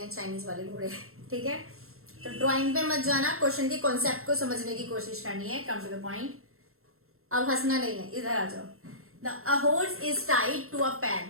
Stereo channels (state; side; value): late; left; 0.62 ms